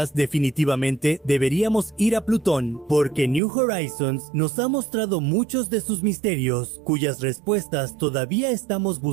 definitivamente deberíamos ir a Plutón, porque New Horizons nos ha mostrado muchos de sus misterios, cuyas respuestas todavía estamos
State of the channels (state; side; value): drops out; left; at 3.4 s